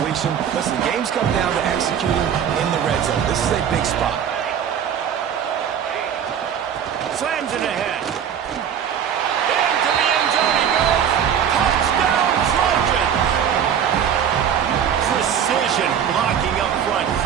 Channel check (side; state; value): left; quieter; 8.6 dB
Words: Listen, games come down to executing in the red zone. This is a big spot. Slams it ahead. Into the end zone he goes. Touchdown, Trojans! Precision blocking up front